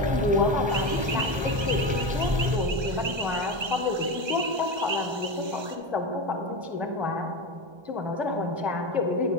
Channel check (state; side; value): late; left; 1.3 ms